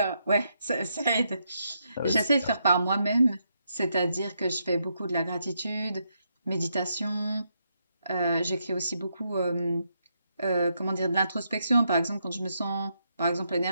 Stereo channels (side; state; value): both; inverted; correlation -0.80